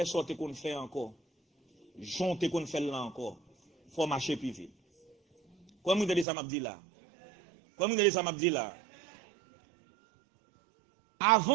sortir qu'on fait encore. Jonter qu'on fait là encore. Il faut marcher plus vite. Comment vous avez ça m'a dit là? Comment vous avez ça m'a dit là?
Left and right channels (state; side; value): drops out; left; at 6.2 s